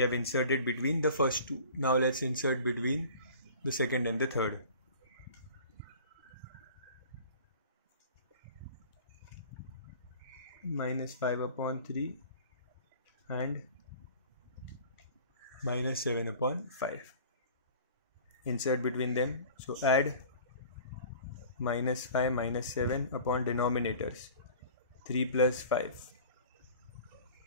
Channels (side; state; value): both; inverted; correlation -0.44